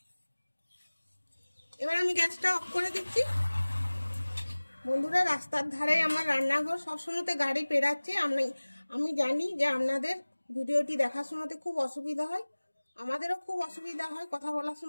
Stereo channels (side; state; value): both; inverted; correlation -1.00